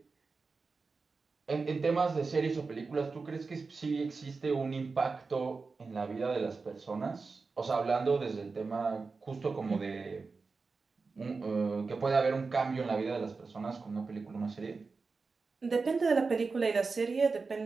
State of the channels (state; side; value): quieter; left; 4.4 dB